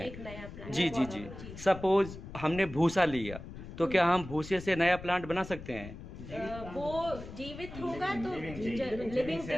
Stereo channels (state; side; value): noise; left; rumble, 12 dB below the sound